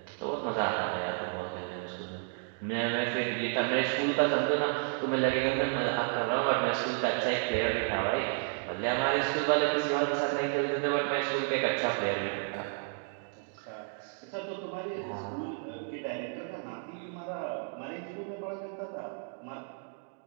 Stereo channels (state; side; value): silent; left; 55 dB below the other